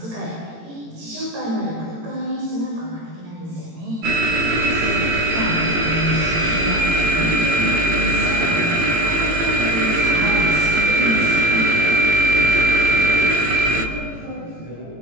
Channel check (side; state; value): left; late; 18 ms